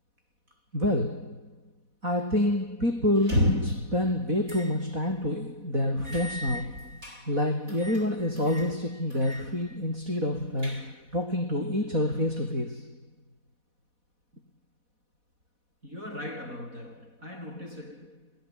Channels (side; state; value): left; late; 4.1 ms